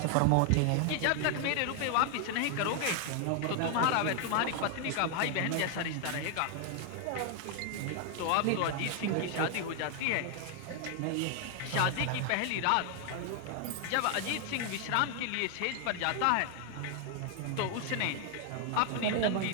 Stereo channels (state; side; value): different; both; correlation 0.00